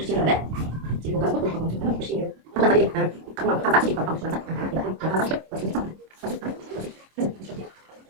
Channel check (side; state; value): left; late; 26 ms